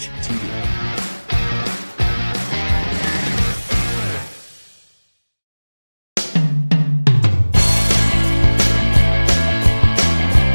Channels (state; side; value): inverted; both; correlation -1.00